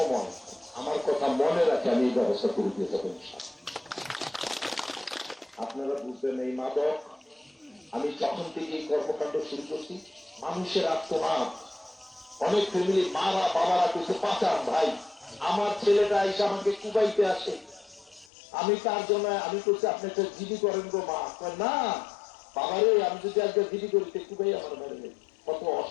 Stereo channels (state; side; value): drops out; right; at 18.2 s